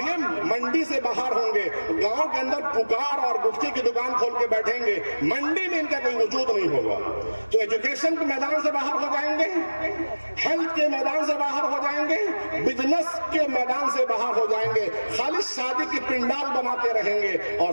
منڈی سے باہر ہوں گے, گاؤں کے اندر پکار اور گٹکے کی دکان کھول کے بیٹھیں گے, منڈی میں ان کا کوئی وجود نہیں ہوگا. تو ایجوکیشن کے میدان سے باہر ہو جائیں گے, ہیلتھ کے میدان سے باہر ہو جائیں گے, بزنس کے میدان سے باہر ہو جائیں گے, خالی شادی کی پنڈال بناتے رہیں گے اور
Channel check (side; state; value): both; inverted; correlation -1.00